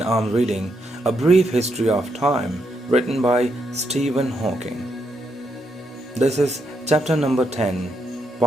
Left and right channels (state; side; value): normal; both; correlation 0.79